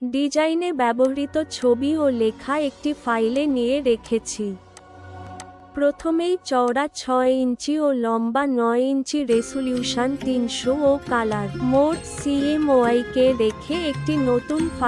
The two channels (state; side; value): identical; both; correlation 1.00